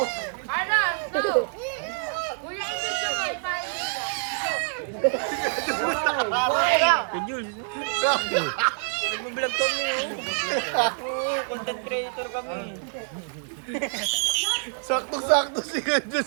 Ano? Ito. Kuya, ibig ko mo. Ipahin ka. Jules! Nag-vlog kami oh. Content creator kami. Sakto-sakto sila dun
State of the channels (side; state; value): left; silent; digital silence